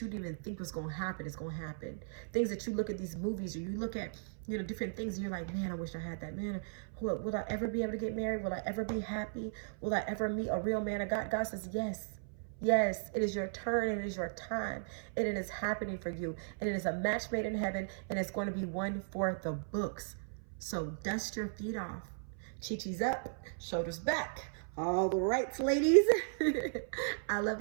didn't even think was going to happen is going to happen. Things that you look at these movies, or you look at, different things, and you're like, man, I wish I had that. Man, will I ever be able to get married? Will I ever be happy? Will I ever meet a real man of God? God says, yes. Yes, it is your turn, and it is your time, and it is happening for you. And it is a match made in heaven, and it's going to be one for the books. So dust your feet off. Chi-chi's up, shoulders back. All the rights, ladies. I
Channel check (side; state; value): left; silent; 53 dB below the other